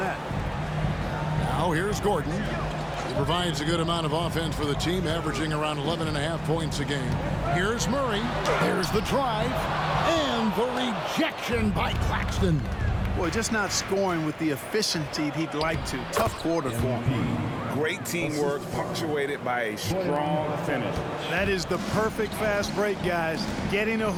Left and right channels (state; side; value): identical; both; correlation 1.00